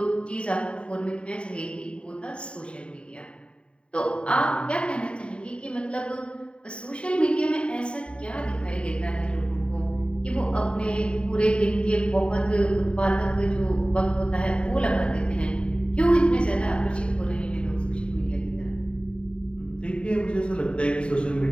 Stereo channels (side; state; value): right; late; 0.056 ms